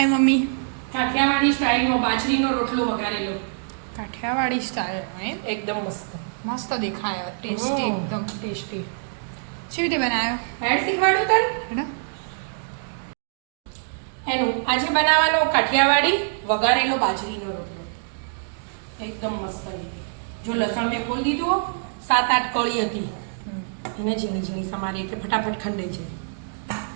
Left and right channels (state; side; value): silent; left; digital silence